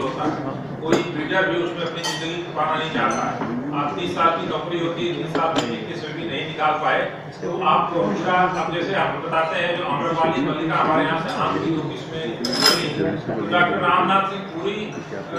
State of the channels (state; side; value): identical; both; correlation 1.00